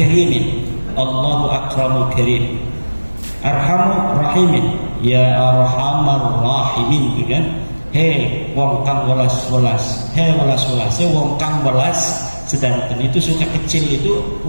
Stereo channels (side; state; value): both; inverted; correlation -1.00